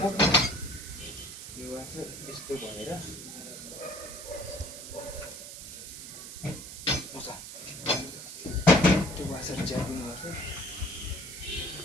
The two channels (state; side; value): noise; right; hiss, 11 dB below the sound